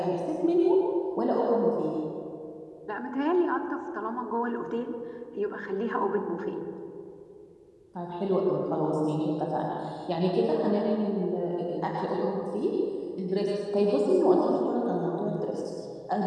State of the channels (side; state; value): both; identical; correlation 1.00